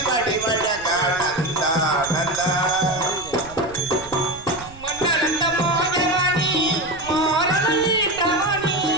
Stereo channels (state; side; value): noise; right; rumble, 19 dB below the sound